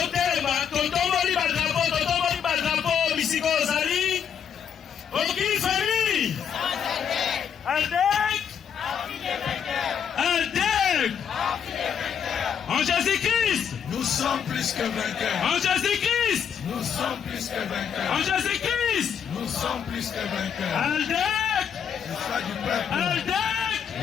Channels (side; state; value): right; quieter; 7.9 dB